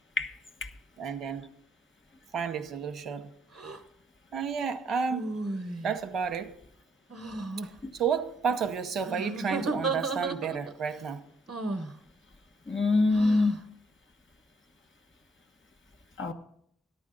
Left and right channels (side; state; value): both; normal; correlation 0.70